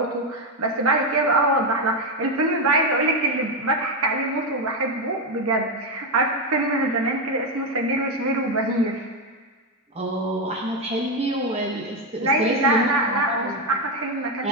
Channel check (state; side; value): normal; both; correlation 0.07